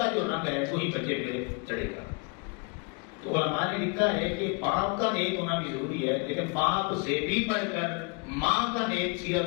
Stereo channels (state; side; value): quieter; right; 31.2 dB